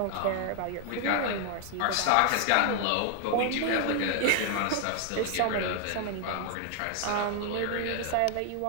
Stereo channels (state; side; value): different; both; correlation 0.00